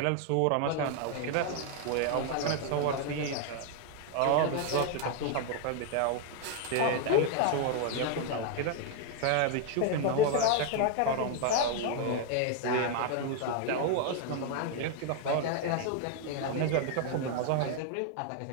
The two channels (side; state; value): both; different; correlation 0.00